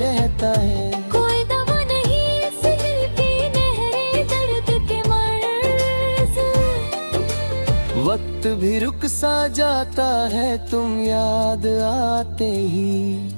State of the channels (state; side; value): inverted; both; correlation -1.00